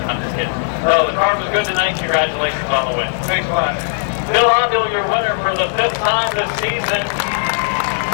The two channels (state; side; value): silent; right; digital silence